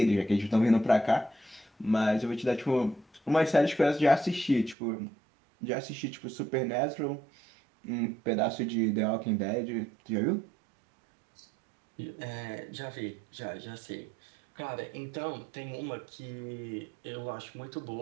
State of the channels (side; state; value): left; drops out; at 4.8 s